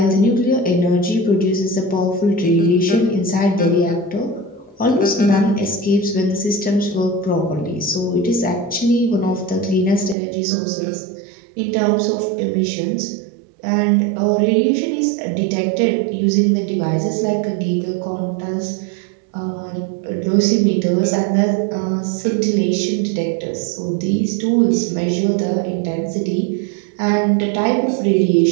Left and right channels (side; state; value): left; drops out; at 10.2 s